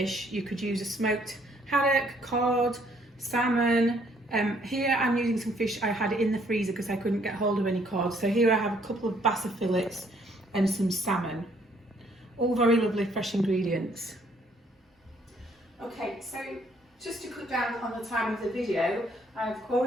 You could use a smoked haddock, cod, salmon. Here I'm using some fish I had in the freezer because I couldn't get hold of any cod. So here I have a couple of bass fillets and some salmon. All very lovely fresh ingredients. Okay, so just to cut down on the time of the video, I've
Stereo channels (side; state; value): both; normal; correlation 0.65